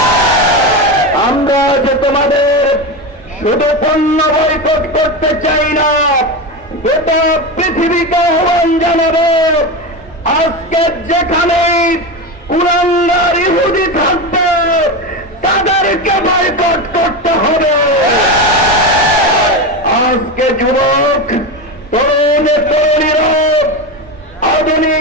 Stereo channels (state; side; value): normal; both; correlation 0.19